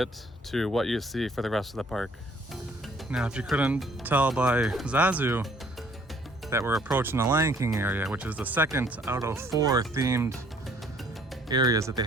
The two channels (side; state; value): both; normal; correlation 0.60